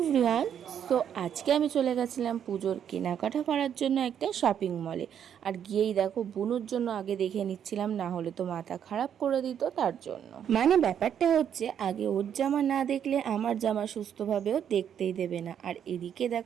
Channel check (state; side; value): quieter; left; 8.9 dB